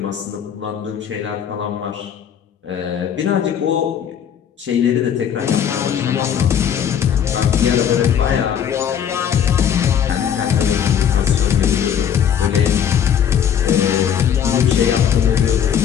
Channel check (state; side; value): quieter; right; 8.6 dB